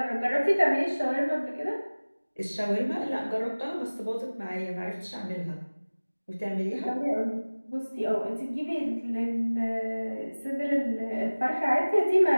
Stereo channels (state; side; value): inverted; both; correlation -1.00